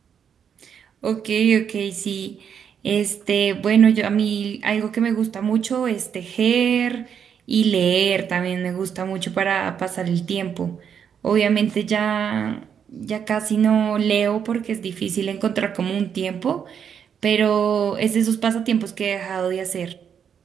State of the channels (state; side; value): quieter; left; 7.8 dB